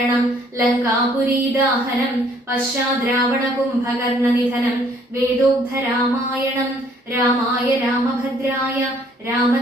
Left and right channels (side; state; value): both; normal; correlation 0.62